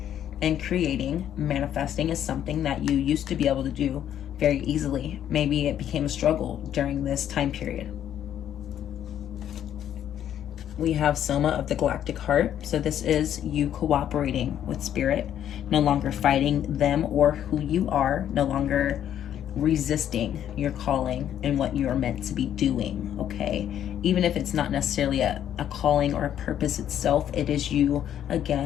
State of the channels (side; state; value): right; quieter; 10.4 dB